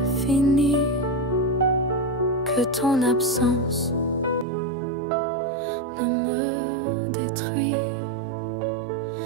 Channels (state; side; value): drops out; left; at 4.5 s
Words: fini, que ton absence ne me détruit.